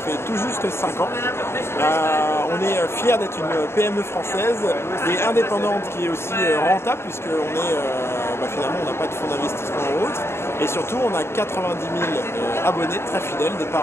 fait tout juste 5 ans. On est fiers d'être une PME française et indépendante qui est aussi rentable, puisqu'on est finalement on n'a pas de fonds d'investissement ou autre, et surtout on a 90 000 abonnés très fidèles, des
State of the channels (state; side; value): late; right; 0.12 ms